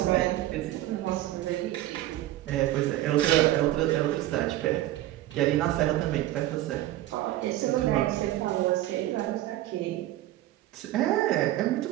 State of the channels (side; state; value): left; quieter; 15.0 dB